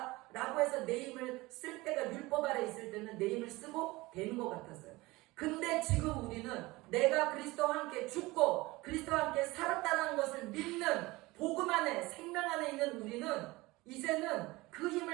라고 해서 내 힘을 쓸 때가 율법 아래 있을 때는 내 힘을 쓰고 되는 것 같았어요. 근데 지금 우리는 내가 그리스도와 함께 죽고 그리스도와 함께 살았다는 것을 믿는 복음 안에 생명 안에 있는 우리는 이제는 그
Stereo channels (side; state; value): left; quieter; 21.2 dB